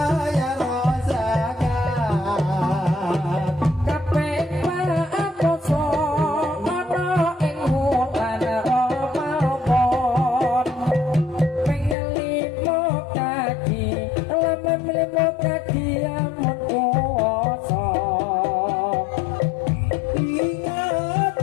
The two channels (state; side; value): drops out; right; at 12.0 s